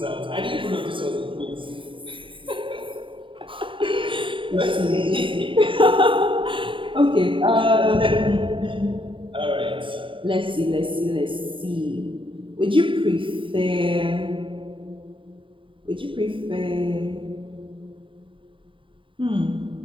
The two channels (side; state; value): left; late; 0.25 ms